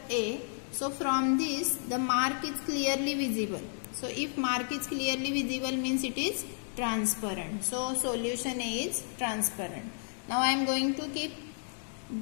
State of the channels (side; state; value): right; silent; digital silence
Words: A. So from this the mark is clearly visible. So if mark is clearly visible, means it is transparent. So solution A is transparent. Now I am going to keep